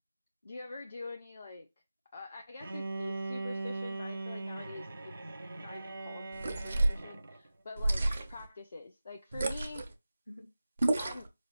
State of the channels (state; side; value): inverted; both; correlation -0.95